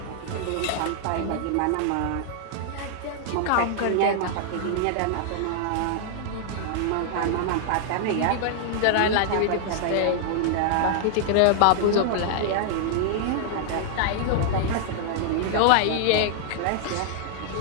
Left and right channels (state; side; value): different; both; correlation -0.01